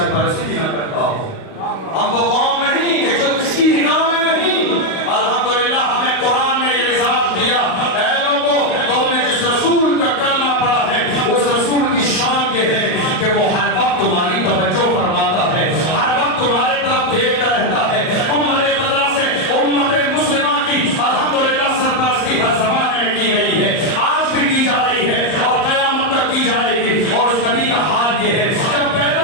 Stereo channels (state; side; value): late; right; 38 ms